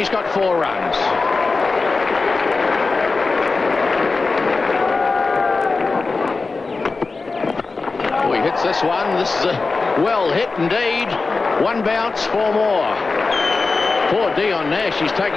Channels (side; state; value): right; quieter; 4.0 dB